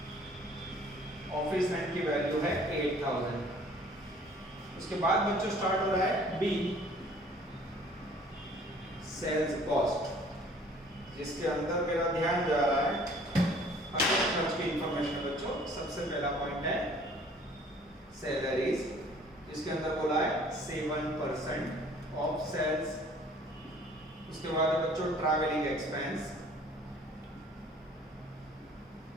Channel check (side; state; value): both; normal; correlation 0.54